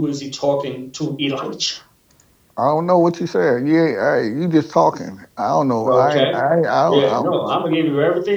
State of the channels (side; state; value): both; identical; correlation 1.00